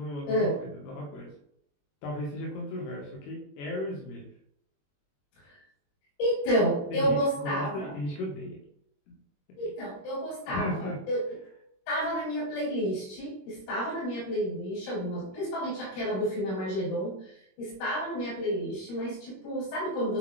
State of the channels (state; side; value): late; right; 21 ms